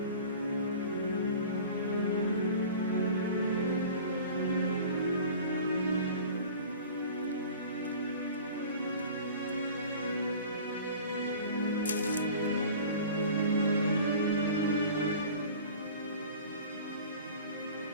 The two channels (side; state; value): both; inverted; correlation -0.42